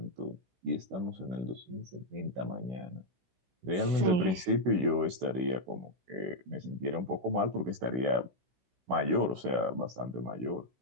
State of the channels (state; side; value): late; left; 16 ms